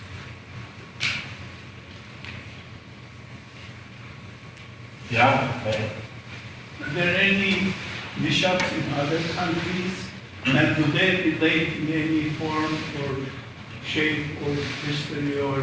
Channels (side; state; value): both; identical; correlation 1.00